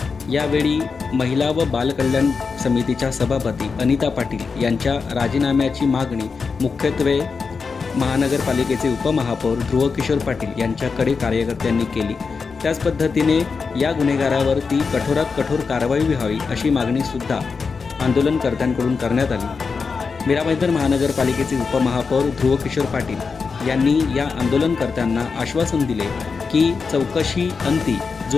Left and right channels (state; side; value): quieter; right; 5.0 dB